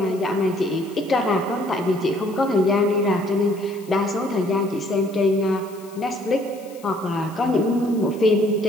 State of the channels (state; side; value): noise; left; hiss, 24 dB below the sound